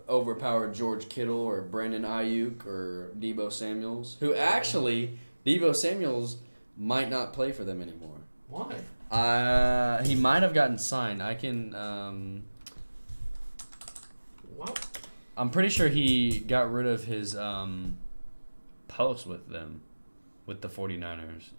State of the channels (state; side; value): inverted; both; correlation -1.00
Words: overpowered George Kittle or Brandon Ayuk or Deebo Samuels, who actually, Deebo Samuels might not play for them anymore. Why? He might have gotten signed. I can... What? I'm pretty sure he got rid of his post with them, with the 49ers.